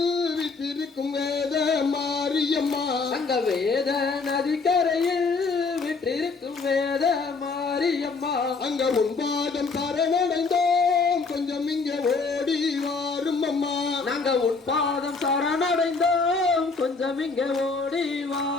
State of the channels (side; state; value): right; quieter; 4.3 dB